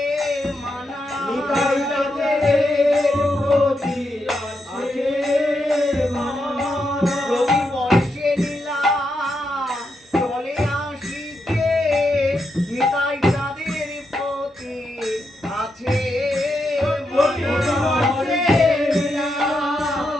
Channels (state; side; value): normal; both; correlation 0.83